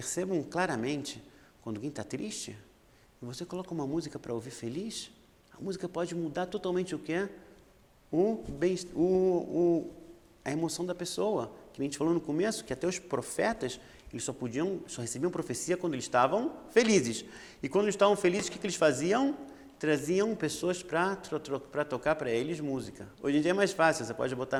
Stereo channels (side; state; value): both; identical; correlation 1.00